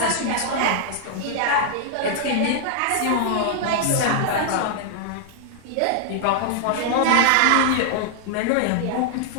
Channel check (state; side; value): different; both; correlation -0.01